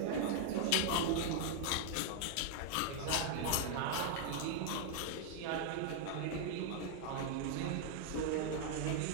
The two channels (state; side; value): different; both; correlation -0.01